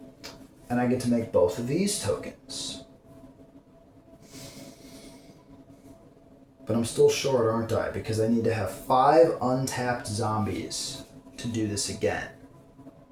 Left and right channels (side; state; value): both; identical; correlation 1.00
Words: and I get to make both of these tokens. But I'm still short, aren't I? Because I need to have 5 untapped zombies to do this again.